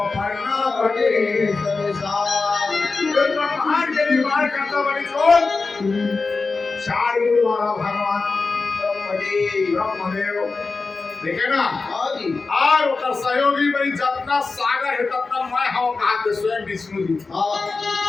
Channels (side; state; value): right; quieter; 4.1 dB